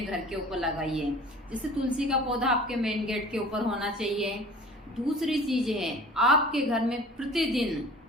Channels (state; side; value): normal; both; correlation 0.44